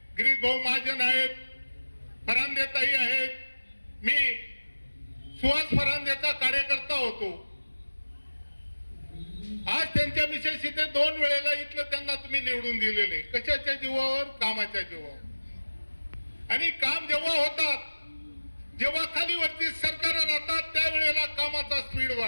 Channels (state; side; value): inverted; both; correlation -1.00